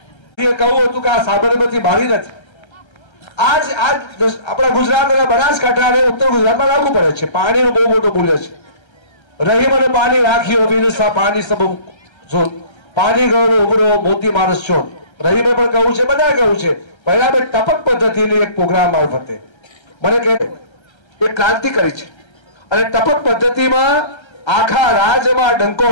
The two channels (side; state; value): right; late; 1.3 ms